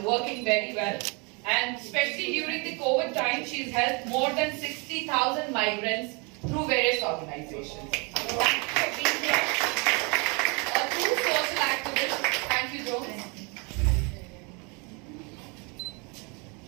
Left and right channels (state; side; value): quieter; left; 31.6 dB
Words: working very well. And especially during the COVID time, she's helped more than 60,000 migrants through various organizations. Thank you for being here. A true social activist. Thank you, Jones.